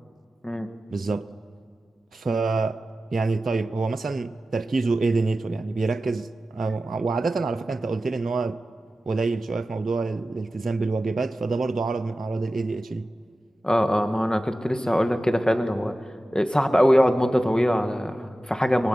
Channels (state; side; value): normal; both; correlation 0.94